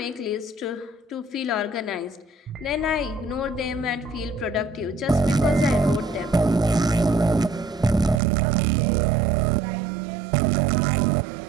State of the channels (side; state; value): left; drops out; at 8.2 s